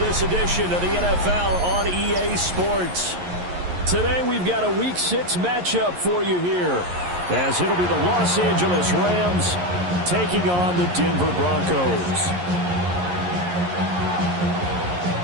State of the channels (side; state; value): left; late; 11 ms